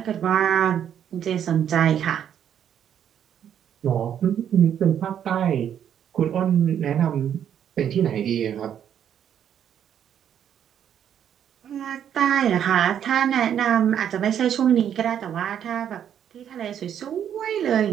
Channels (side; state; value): left; quieter; 9.3 dB